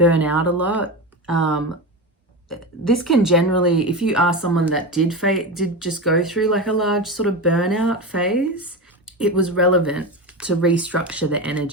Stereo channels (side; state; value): both; normal; correlation 0.21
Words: out a lot. This can generally, if you are someone that did just go through like a large sort of burnout phase, it was relevant to restructure the